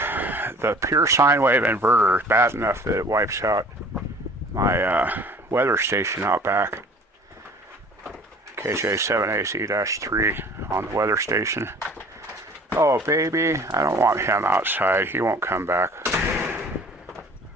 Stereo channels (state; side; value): normal; both; correlation 0.48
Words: pure sine wave inverter is bad enough that it wipes out my weather station out back. KJ7AC-3 on the weather station. Oh, baby, I don't want him outside. He won't come back.